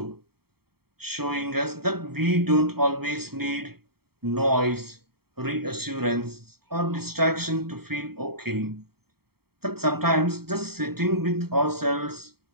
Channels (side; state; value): left; late; 0.95 ms